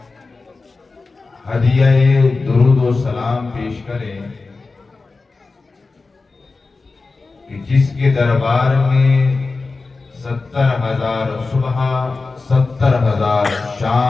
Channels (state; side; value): quieter; right; 3.9 dB